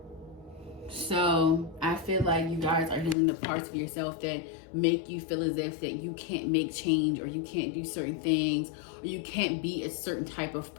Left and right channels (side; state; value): right; drops out; at 3.2 s